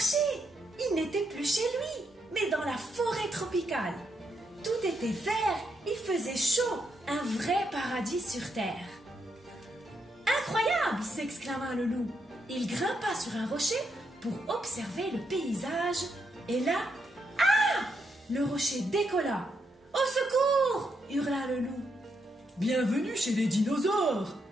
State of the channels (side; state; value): both; normal; correlation 0.80